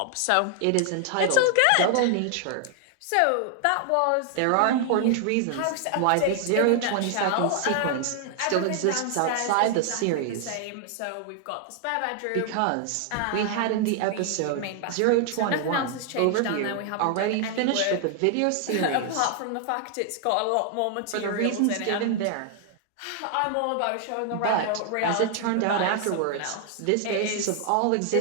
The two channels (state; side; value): different; both; correlation 0.00